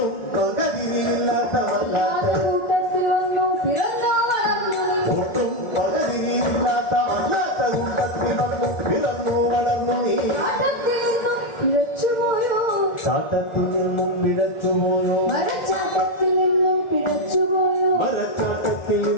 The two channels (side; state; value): right; late; 2.1 ms